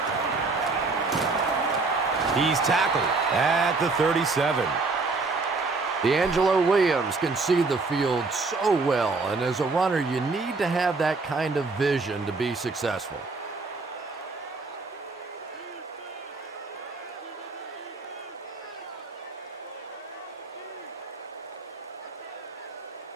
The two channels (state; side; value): quieter; left; 3.9 dB